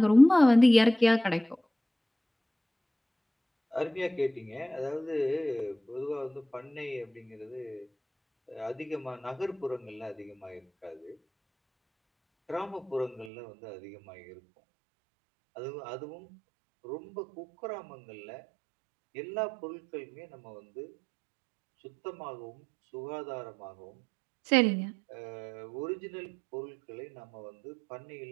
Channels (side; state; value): left; drops out; at 13.3 s